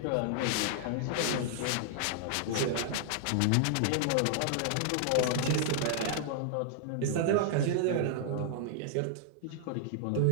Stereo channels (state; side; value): different; both; correlation -0.01